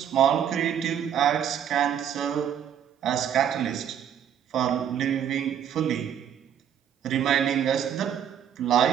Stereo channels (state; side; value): quieter; left; 9.2 dB